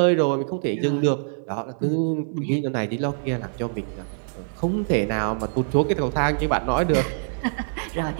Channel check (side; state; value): left; silent; 55 dB below the other